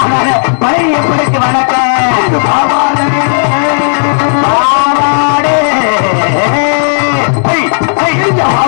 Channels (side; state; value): right; silent; digital silence